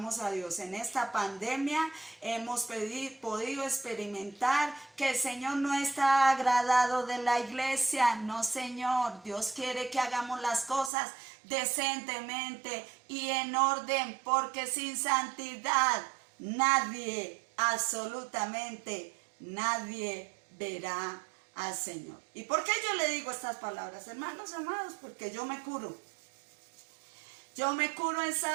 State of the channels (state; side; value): drops out; left; at 10.9 s